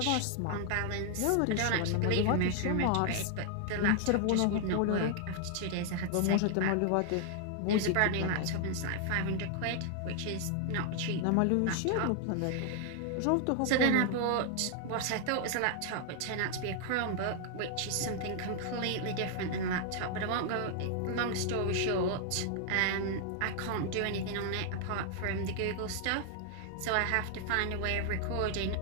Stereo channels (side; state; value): both; different; correlation 0.00